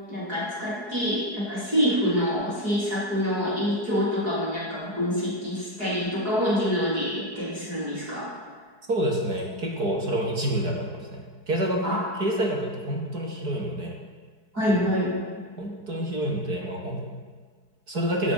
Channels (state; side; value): late; left; 4.7 ms